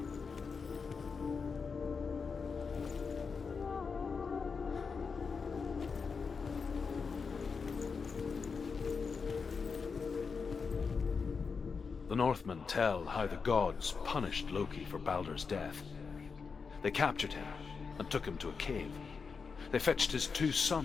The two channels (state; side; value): quieter; right; 5.3 dB